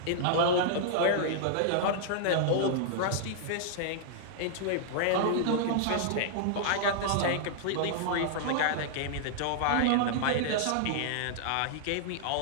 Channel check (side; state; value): both; different; correlation -0.01